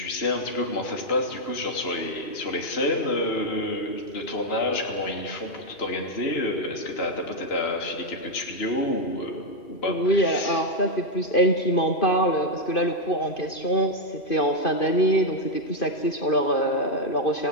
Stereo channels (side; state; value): right; late; 2.5 ms